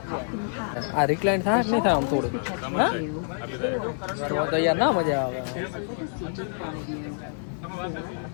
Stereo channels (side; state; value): right; silent; digital silence